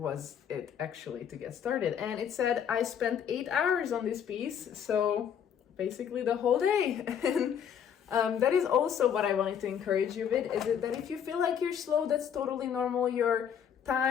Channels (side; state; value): right; quieter; 8.4 dB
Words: it actually to get started. And it said I spent 8 hours on this piece, so basically the whole day. And that is also what I wanted to encourage you with, is that if you feel like you're slow, that's totally normal. Your